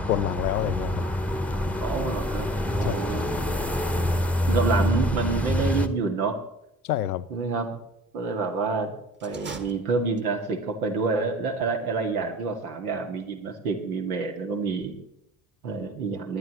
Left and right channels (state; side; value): normal; both; correlation 0.46